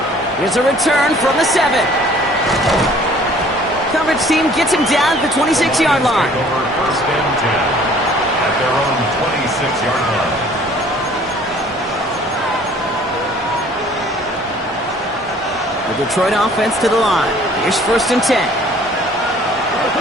Here's a return from the 7. Coverage team gets him down at the 26-yard line. Over 1st and 10 at their own 26-yard line. The Detroit offense to the line. Here's 1st and 10.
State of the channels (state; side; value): normal; both; correlation 0.54